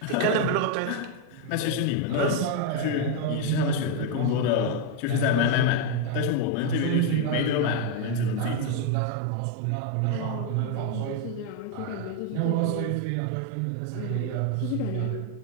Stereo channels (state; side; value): different; both; correlation 0.01